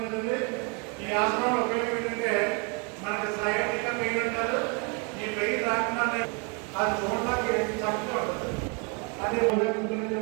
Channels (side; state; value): left; quieter; 34.3 dB